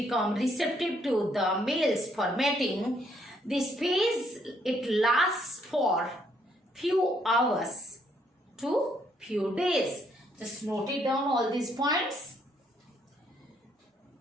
receptive to the males for mating, this phase, it lasts for few hours to few days. Just note it down all these points.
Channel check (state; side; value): normal; both; correlation 0.70